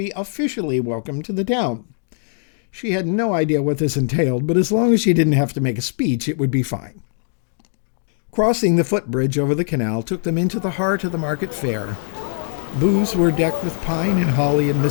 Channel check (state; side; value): silent; right; digital silence